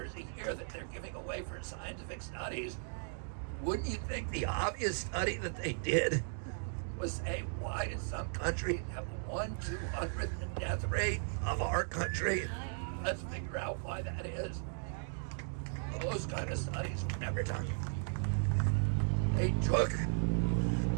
year that they're giving away for scientific studies. Wouldn't you think the obvious study that they did was say, why did some countries have 1/200th the death rate of our country? Let's figure out why that is. Those kind of studies were never done. They took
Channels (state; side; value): silent; left; digital silence